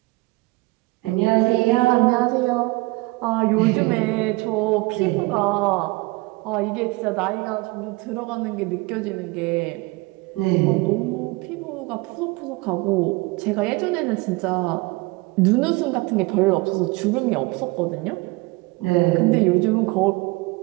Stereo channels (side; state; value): left; quieter; 24.1 dB